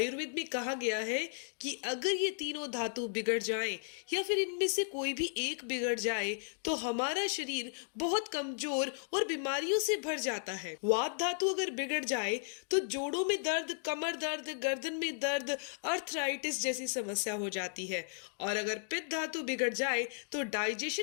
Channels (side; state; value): right; silent; digital silence